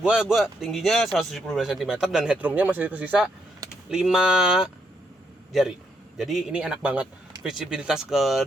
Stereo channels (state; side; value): normal; both; correlation 0.76